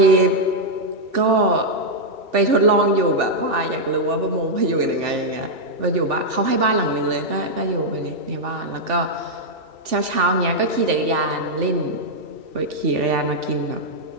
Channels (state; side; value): late; left; 3.4 ms